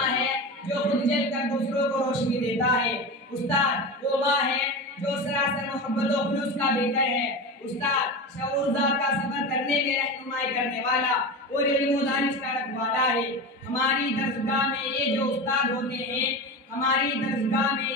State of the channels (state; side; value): normal; both; correlation 0.25